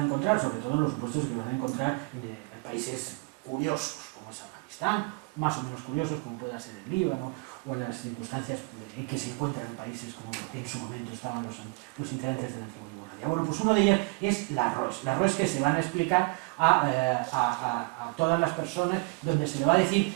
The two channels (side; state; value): left; quieter; 30.7 dB